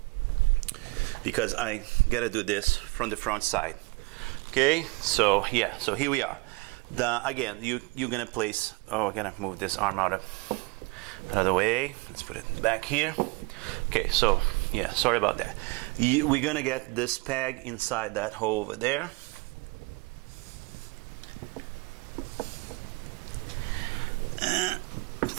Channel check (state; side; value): quieter; left; 25.9 dB